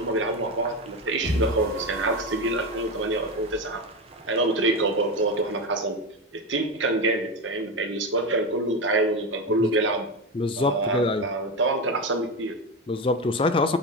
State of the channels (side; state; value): both; normal; correlation 0.17